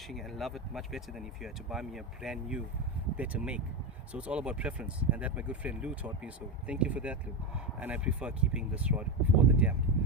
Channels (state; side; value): normal; both; correlation 0.14